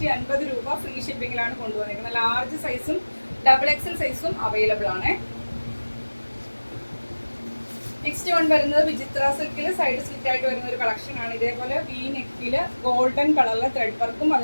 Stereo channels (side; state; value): both; inverted; correlation -1.00